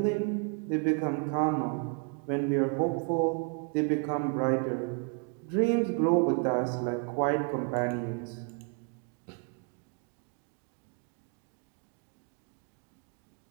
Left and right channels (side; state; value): left; quieter; 37.8 dB